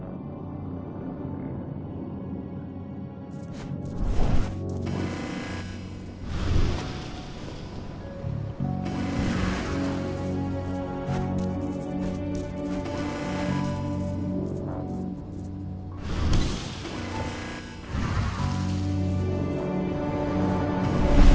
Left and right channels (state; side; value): identical; both; correlation 1.00